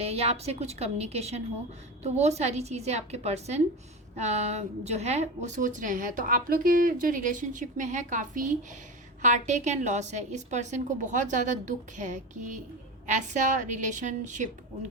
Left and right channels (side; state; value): both; normal; correlation 0.23